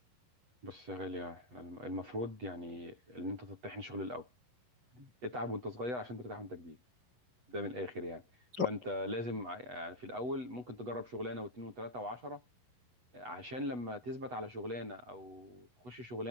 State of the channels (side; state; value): left; late; 11 ms